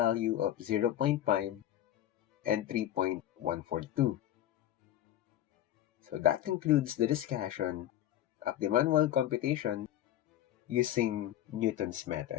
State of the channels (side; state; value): right; quieter; 12.3 dB